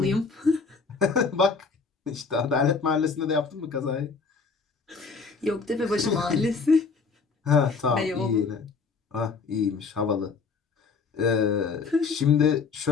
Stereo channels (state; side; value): quieter; right; 4.8 dB